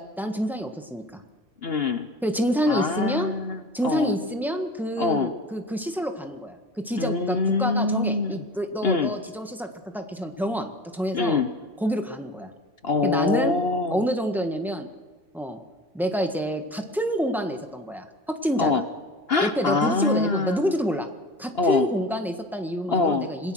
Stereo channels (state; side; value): normal; both; correlation 0.36